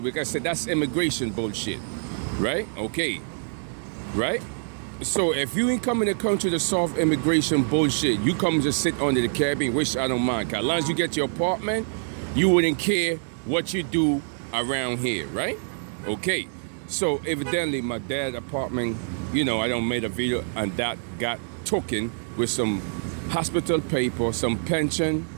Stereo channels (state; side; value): silent; left; digital silence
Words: because I said that's immigration bullshit, right? Okay, right? So if you ain't coming to the country to solve immigration bullshit, you come just sit under the Caribbean, which I don't mind. Cause as long as you get your apartment, you wouldn't care what you do around here, right? Okay, so evidently my dad's apartment, I don't made a video and that got taken with some hospital paper, some pension,